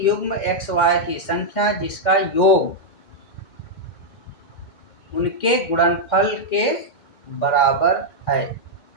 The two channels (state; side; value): late; right; 2.1 ms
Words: युग्म एक्स वाई की संख्या जिसका योग उनके गुणनफल के बराबर है,